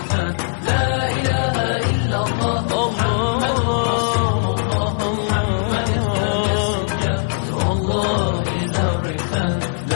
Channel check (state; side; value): silent; right; 66 dB below the other